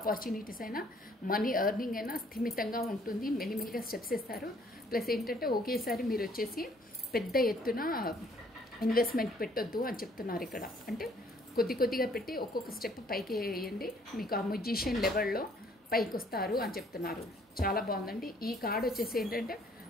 అయినా మనీ ఎర్నింగ్ అయినా స్థిమితంగా ఉంటుంది. మెల్లిమెల్లిగా స్టెప్స్ ఇస్తారు. ప్లస్ ఏంటంటే ఒకేసారి మీరు వచ్చేసి పెద్ద ఎత్తున ఇన్వెస్ట్మెంట్ పెట్టొద్దు అని చెప్తున్నారు ఇక్కడ. అంటే కొద్ది కొద్దిగా పెట్టి ఒక్కొక్క స్టెప్ పైకి వేయండి, మీకు ఆ మ్యూజిషియన్ లెవెల్లో పైకి వస్తారు అని చెప్తున్నారు. చాలా బాగుందండి. ఈ కార్డ్ వచ్చేసి ఏంటంటే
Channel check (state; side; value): normal; both; correlation 0.62